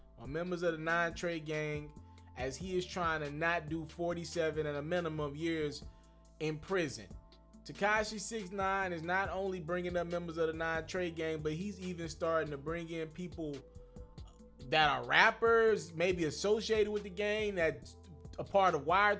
on members of the 9 Trey gang as he is trying to not do 47 and a minimum of years in prison. Tekashi 6ix9ine is not only bringing up members of the 9 Trey gang, but he's even starting to bring in people that are rappers, maybe associated with the gang, that's a part of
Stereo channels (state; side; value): identical; both; correlation 1.00